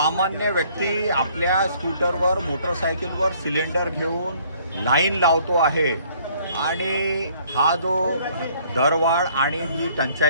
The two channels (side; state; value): both; inverted; correlation -0.61